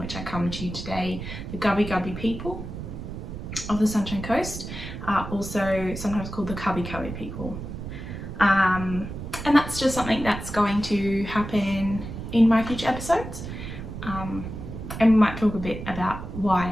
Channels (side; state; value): right; noise; rumble, 8 dB below the sound